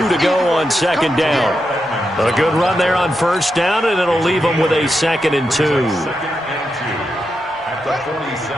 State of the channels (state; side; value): normal; both; correlation 0.86